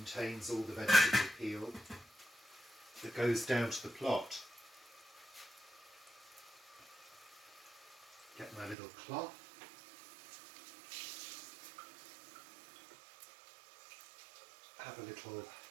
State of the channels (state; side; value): drops out; left; at 8.8 s